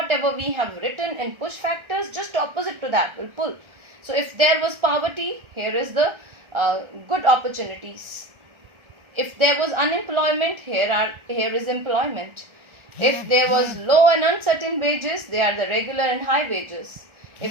we have written in push factors, just opposite to that will pull. So if there was poverty, here is the good opportunities. If there was unemployment, here is employment. If there was low and uncertain wages, they are the regular and high wages.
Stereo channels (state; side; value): late; left; 1.4 ms